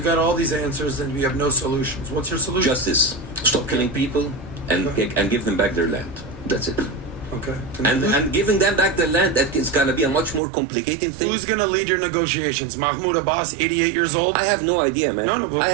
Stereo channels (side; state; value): left; drops out; at 10.4 s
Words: got all these answers and we have no solutions. What's your solution? Justice. Stop killing people and give them back their land. That's it. Okay. And giving them back their land, that is going to be a much more complicated thing. Who's going to lead your negotiations? Mahmoud Abbas, 88 years old? I have no idea, man. No, I